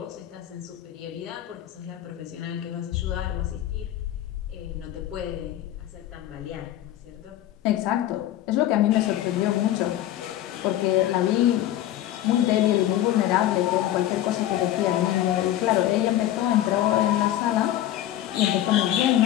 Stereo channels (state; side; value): quieter; right; 12.9 dB